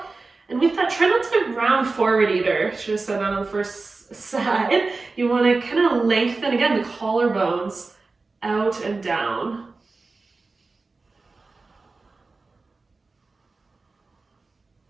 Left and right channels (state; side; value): quieter; left; 3.8 dB